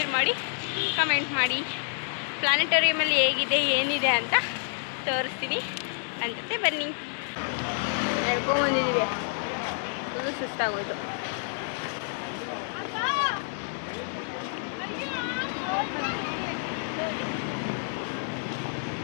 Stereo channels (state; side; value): silent; right; digital silence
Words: ಮಾಡಿ, ಕಮೆಂಟ್ ಮಾಡಿ. ಪ್ಲಾನೆಟೋರಿಯಮಲ್ಲಿ ಹೇಗಿದೆ ಏನಿದೆ ಅಂತ ತೋರಿಸ್ತೀನಿ. ನನ್ನ ಜೊತೆ ಬನ್ನಿ. ಹೇಳ್ಕೊಂಬಂದಿದ್ದೀವಿ, ಫುಲ್ಲು ಸುಸ್ತಾಗೋಯ್ತು.